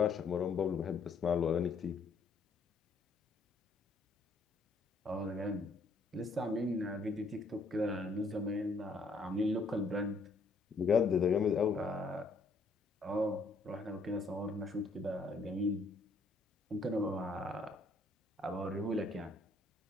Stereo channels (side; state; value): right; quieter; 3.5 dB